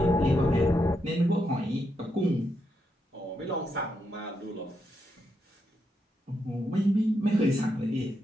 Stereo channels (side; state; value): both; normal; correlation 0.82